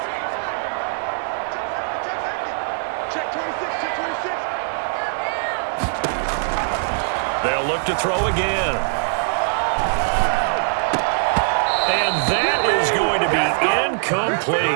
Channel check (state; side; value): silent; left; 63 dB below the other